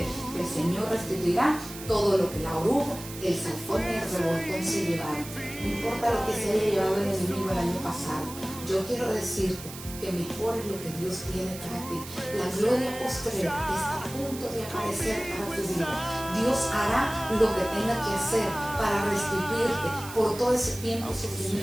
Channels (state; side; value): noise; right; hiss, 13 dB below the sound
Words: que el Señor restituirá todo lo que la oruga, el salfón y el revoltón se llevaron. No importa lo que se haya llevado el enemigo el año pasado, yo quiero decirte que mejor es lo que Dios tiene para ti. La gloria postrera está a punto de aparecer para tu vida. Dios hará lo que tenga que hacer para restituirte por todo ese tiempo de